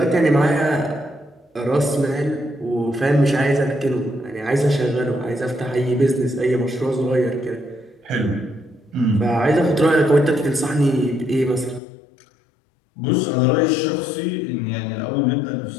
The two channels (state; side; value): drops out; right; at 11.8 s